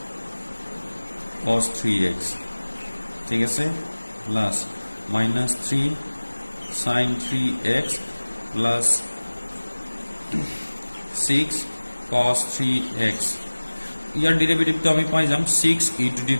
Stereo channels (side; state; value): both; inverted; correlation -1.00